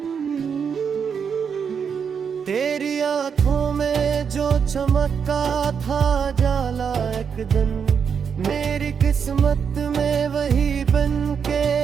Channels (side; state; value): left; quieter; 6.8 dB